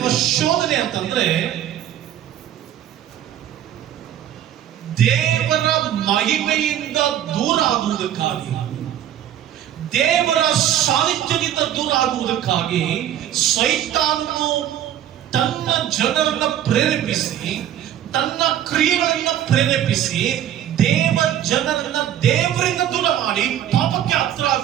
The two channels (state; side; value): quieter; left; 11.1 dB